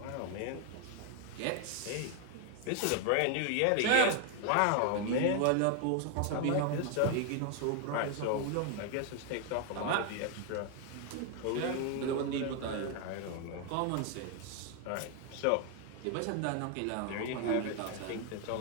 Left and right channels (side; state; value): both; different; correlation 0.00